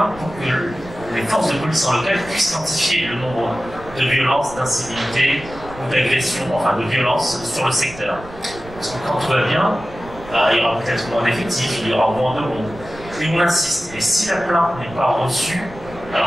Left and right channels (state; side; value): noise; right; rumble, 17 dB below the sound